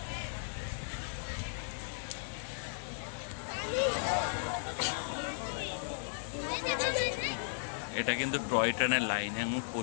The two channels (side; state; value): right; silent; digital silence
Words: এটা কিন্তু টয় ট্রেনের লাইন এবং